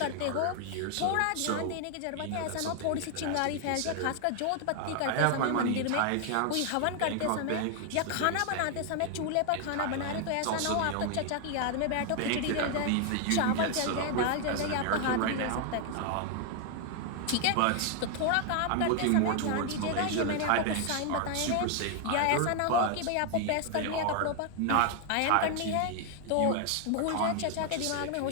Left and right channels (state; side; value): different; both; correlation 0.00